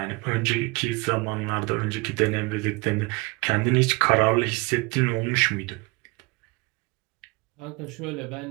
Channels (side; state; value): left; quieter; 26.2 dB